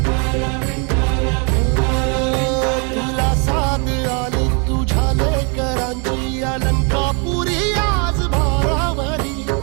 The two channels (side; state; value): left; quieter; 34.8 dB